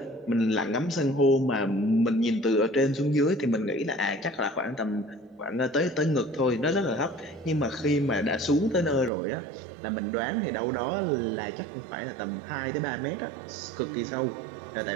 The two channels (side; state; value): left; drops out; at 9.1 s